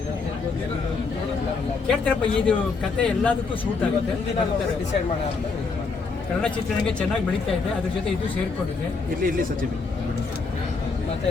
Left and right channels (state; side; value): quieter; right; 4.5 dB